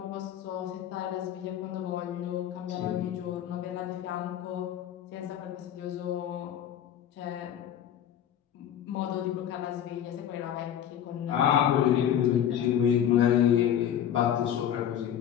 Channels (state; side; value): quieter; right; 10.1 dB